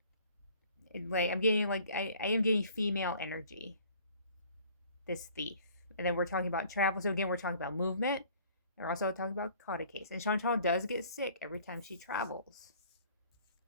like I'm getting like I am getting female energy. This thief, and then we're talking about travel. So again, we're talking about movement. And we're also talking about caught a case. And Chantal does get sick every time she travels,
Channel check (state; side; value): inverted; both; correlation -0.53